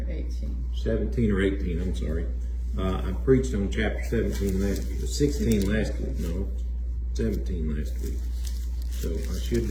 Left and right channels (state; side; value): identical; both; correlation 1.00